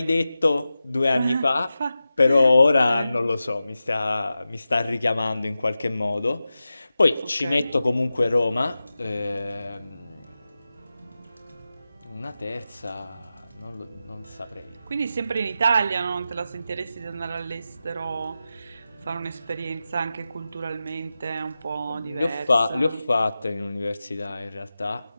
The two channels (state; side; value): inverted; both; correlation -0.93